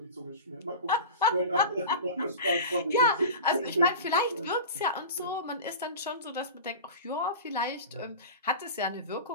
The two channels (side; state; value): both; inverted; correlation -0.31